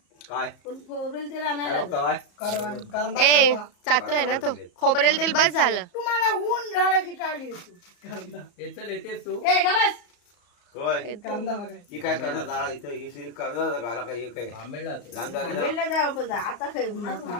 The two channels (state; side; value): late; right; 34 ms